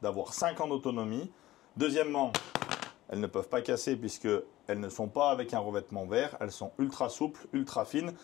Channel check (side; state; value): right; quieter; 15.9 dB